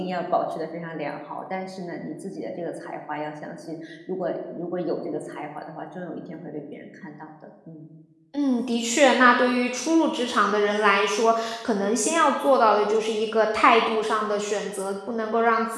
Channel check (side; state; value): both; identical; correlation 1.00